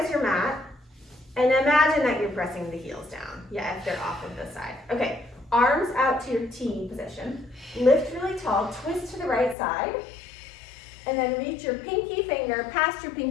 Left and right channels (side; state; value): right; drops out; at 9.6 s